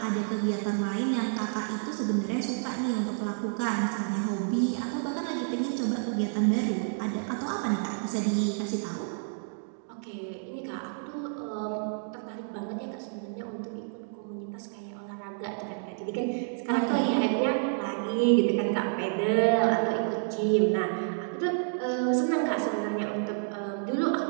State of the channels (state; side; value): silent; left; digital silence